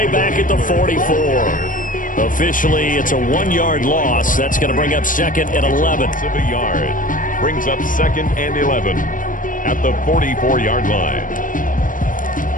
back at the 44. Officially, it's a 1-yard loss. That's going to bring up 2nd and 11. Of a yard. Brings up 2nd and 11 at the 44-yard line.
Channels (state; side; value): late; right; 0.39 ms